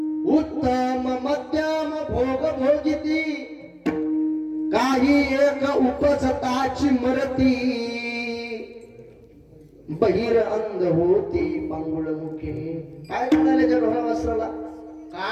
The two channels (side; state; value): both; identical; correlation 1.00